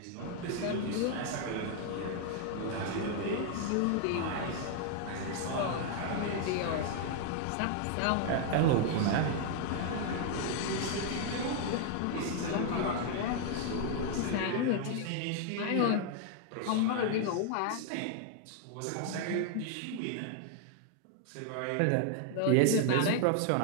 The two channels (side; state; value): both; different; correlation 0.00